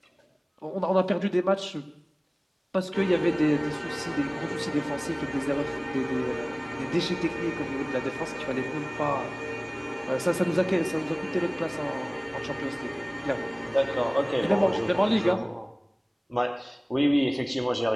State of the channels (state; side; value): identical; both; correlation 1.00